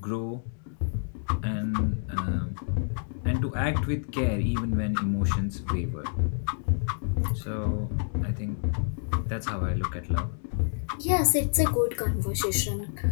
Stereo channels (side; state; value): right; silent; digital silence